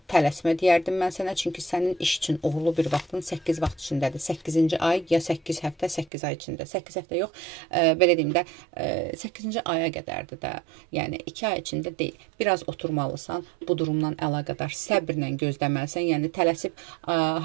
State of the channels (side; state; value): left; drops out; at 6.1 s